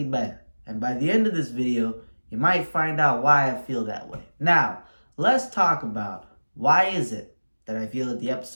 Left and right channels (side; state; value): both; inverted; correlation -1.00